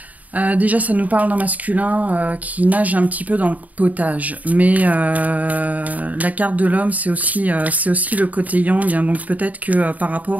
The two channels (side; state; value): left; late; 0.074 ms